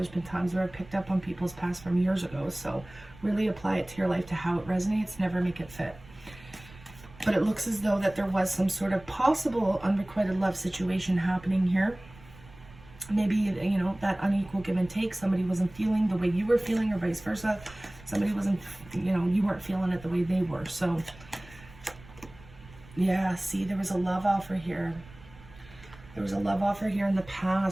been times where I've picked up on people's past from years ago. So really apply it to your life, to how it resonates. Never make it fit. But it looks as though that there was some sort of possible unrequited love situation happening here. Maybe, you know, that unequal give and take. Somebody wasn't feeling the way you were feeling, or vice versa. Somebody wasn't, you know, you weren't feeling it the way they were. So, yeah, see, there was a love offer here. There was a love offer here in the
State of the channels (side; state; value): right; noise; rumble, 21 dB below the sound